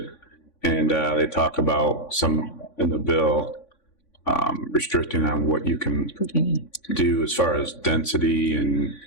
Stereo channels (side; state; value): right; late; 3.5 ms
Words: And they talk about some in the bill restricting on what you can do as far as density and